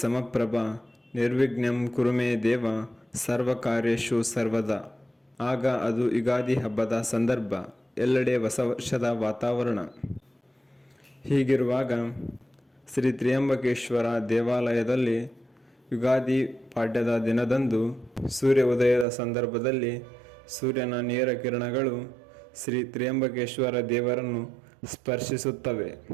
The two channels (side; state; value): left; drops out; at 19.1 s